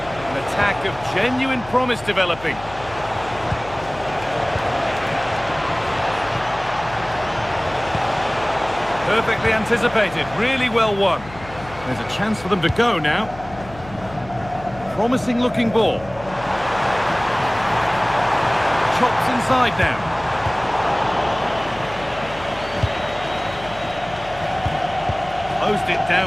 An attack of genuine promise developing. Perfectly anticipated, really well won. There's a chance for them to go now. Promising looking ball. Chops inside now. Closed it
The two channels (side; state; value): left; noise; hum, 17 dB below the sound